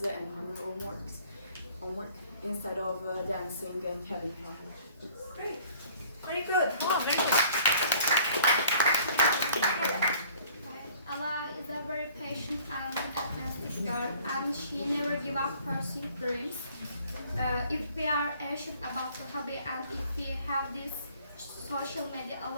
and on her homework instead of dancing and having fun. Great. Very good. Oh, very good. Ella is a very patient and athletic girl, and she never gives up pursuing dreams. If we are passionate about the hobby and if we have this, social media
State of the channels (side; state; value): both; inverted; correlation -0.54